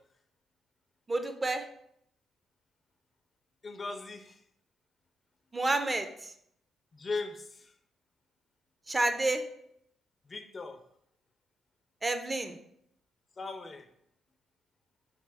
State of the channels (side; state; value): both; normal; correlation 0.92